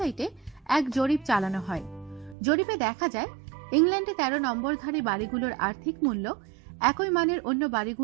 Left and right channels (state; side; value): drops out; left; at 2.4 s